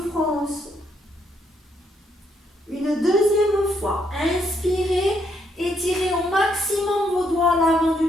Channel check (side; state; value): both; normal; correlation 0.74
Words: front. Une deuxième fois. Inspirez. Étirez au maximum vos doigts à l'avant